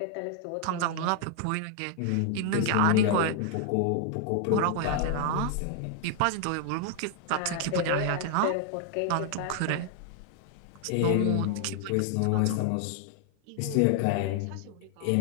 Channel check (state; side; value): different; both; correlation 0.00